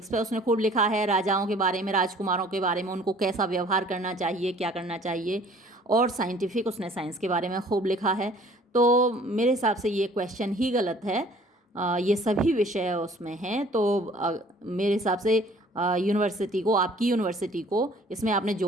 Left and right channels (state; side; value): normal; both; correlation 0.54